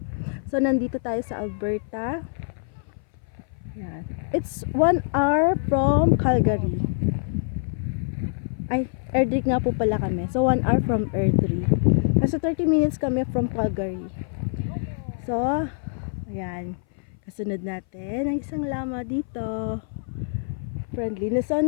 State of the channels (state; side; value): silent; right; 59 dB below the other